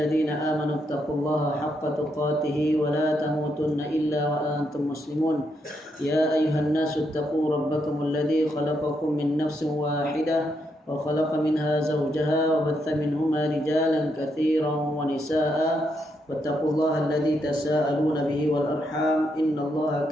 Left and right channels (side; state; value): both; normal; correlation 0.79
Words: آمنوا اتقوا الله حق تقاته ولا تموتن إلا وأنتم مسلمون يا أيها الناس اتقوا ربكم الذي خلقكم من نفس واحدة وخلق منها زوجها وبث منهما رجالا كثيرا ونساء واتقوا الله الذي تساءلون به والأرحام إن الله